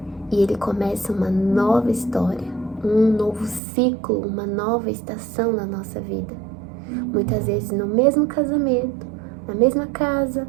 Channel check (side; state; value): left; drops out; at 3.6 s